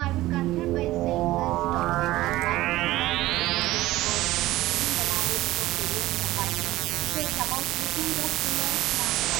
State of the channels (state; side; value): quieter; left; 16.8 dB